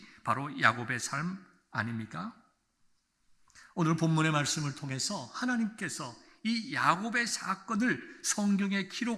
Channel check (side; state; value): both; identical; correlation 1.00